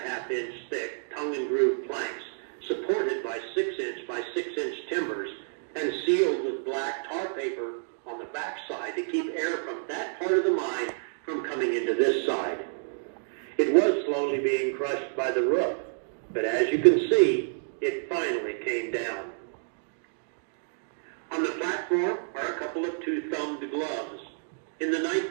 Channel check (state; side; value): silent; left; digital silence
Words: inch thick tongue and groove planks supported by 6 inch by 6 inch timbers and sealed with black tar paper on the backside to keep air from that part of the mine from coming into this side. It was slowly being crushed by the roof, but as you can see, it finally came down. On the platform are a couple of two-thumbed gloves. In the